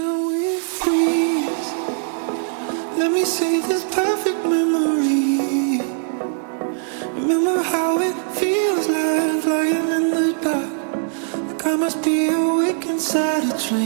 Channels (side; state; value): left; silent; digital silence